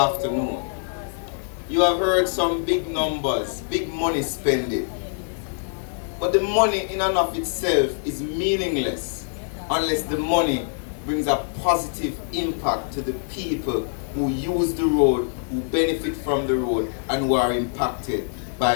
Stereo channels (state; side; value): silent; right; 63 dB below the other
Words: you have heard some big numbers, big money spending. But the money in and of itself is meaningless unless the money brings a positive impact to the people who use the road, who benefit from the road, and who are impacted